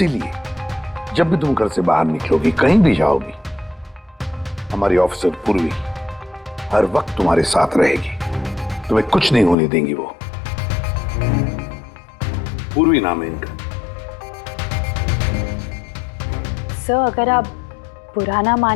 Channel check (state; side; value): drops out; right; at 9.6 s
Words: जब भी तुम घर से बाहर निकलोगी, कहीं भी जाओगी, हमारी ऑफिसर पूर्वी हर वक्त तुम्हारे साथ रहेगी। तुम्हें कुछ नहीं होने देंगी वो। पूर्वी नाम है इनका। सर, अगर आप बुरा ना